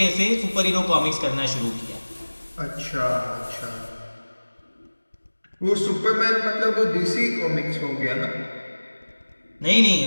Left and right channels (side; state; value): both; inverted; correlation -1.00